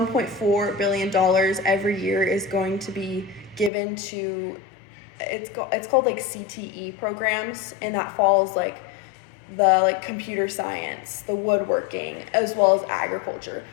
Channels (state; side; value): drops out; right; at 3.7 s